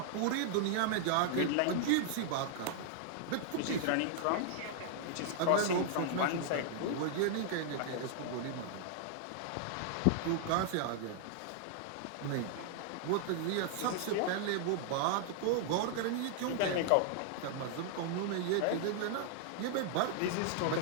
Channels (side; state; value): both; different; correlation -0.01